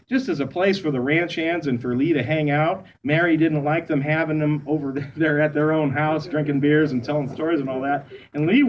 just as a place for the ranch hands and for Lee to hang out. Mary didn't like them having them over there at their own house, drinking beers and telling stories and all that. And Lee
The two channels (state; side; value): identical; both; correlation 1.00